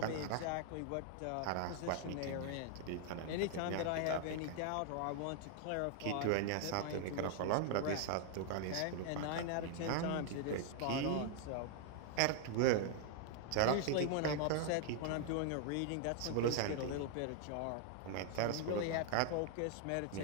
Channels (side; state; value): both; different; correlation 0.00